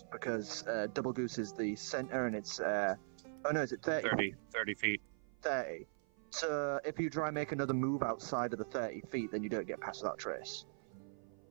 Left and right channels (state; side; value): silent; left; 51 dB below the other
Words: because Doublegoose is the center and it's oh no, is it 30? 30 feet. 30. So if you try and make another move outside of the 30 feet, then you don't get past that trace.